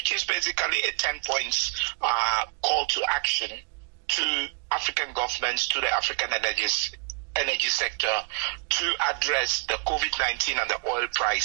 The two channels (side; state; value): left; quieter; 39.0 dB